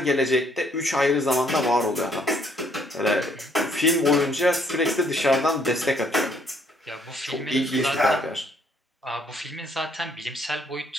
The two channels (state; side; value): normal; both; correlation 0.66